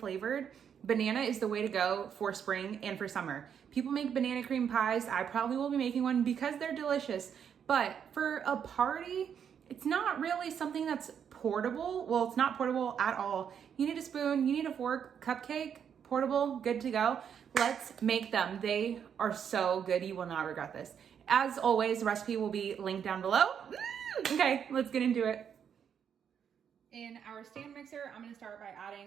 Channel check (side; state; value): left; quieter; 8.0 dB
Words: banana is the way to go for spring and for summer. People make banana cream pies. I probably will be making one because they're delicious. But for a party, it's not really something that's portable. Well, it's not portable at all. You need a spoon, you need a fork, cupcake, portable, good to go. Let's make them. They are so good. You will not regret this. As always, the recipe will be linked down below. Okay, let's get into it. In our stand mixer, I'm gonna start by